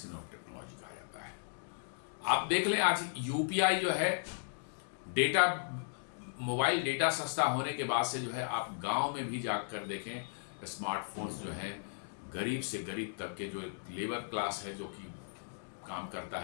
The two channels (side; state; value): right; silent; digital silence